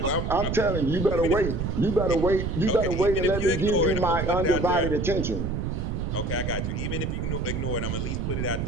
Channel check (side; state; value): right; noise; rumble, 2 dB below the sound